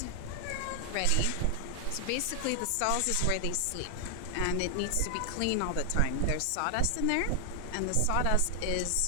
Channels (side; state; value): both; different; correlation 0.00